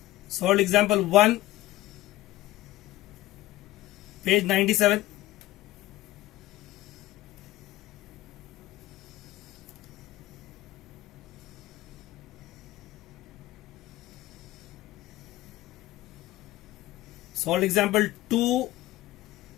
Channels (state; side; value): quieter; right; 16.8 dB